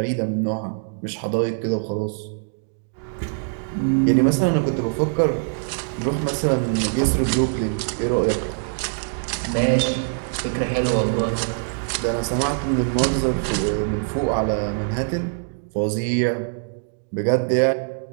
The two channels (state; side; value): silent; left; digital silence